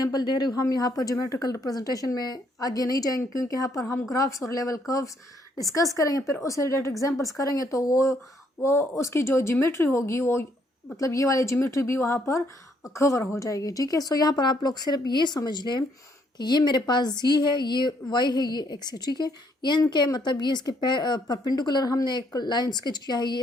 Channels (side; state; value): both; normal; correlation 0.70